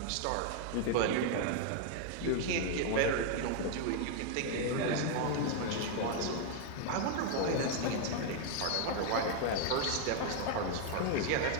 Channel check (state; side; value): different; both; correlation 0.00